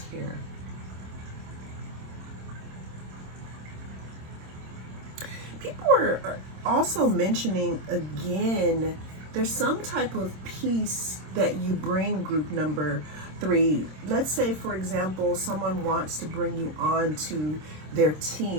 here. People are also mentioning, again, there's some type of peace that you bring, group number 3. Let's say, for example, someone wants to bring you on to their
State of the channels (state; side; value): late; left; 26 ms